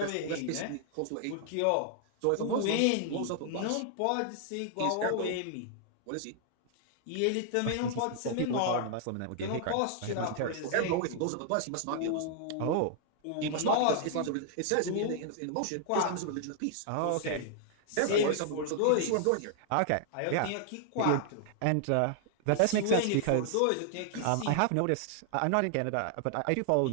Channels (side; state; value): both; different; correlation -0.01